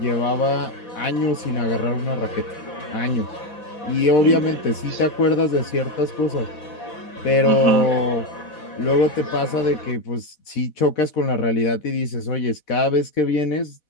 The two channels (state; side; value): late; right; 4.1 ms